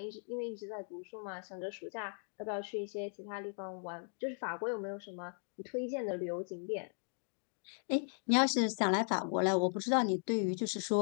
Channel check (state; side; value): silent; right; 53 dB below the other